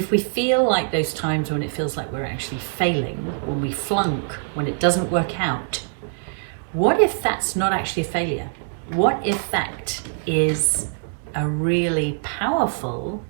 we feel like those times when it feels like we're actually failing, when we flunk, when it doesn't work out, what if that's not actually a failure? What if that is a really powerful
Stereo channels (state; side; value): silent; left; digital silence